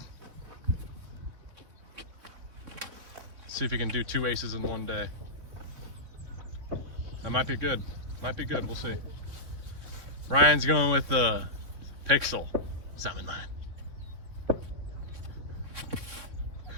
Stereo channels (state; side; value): late; left; 3.6 ms